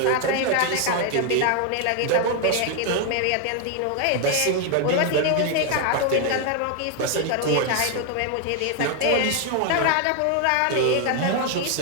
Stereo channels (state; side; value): different; both; correlation 0.01